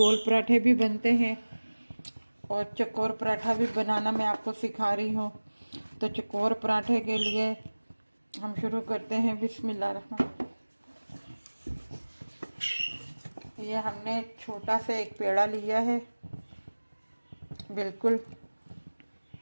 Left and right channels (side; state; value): both; inverted; correlation -1.00